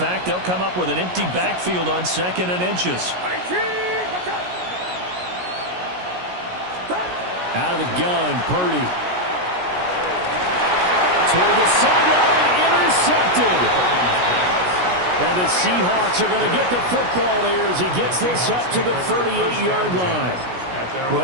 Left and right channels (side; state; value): left; late; 17 ms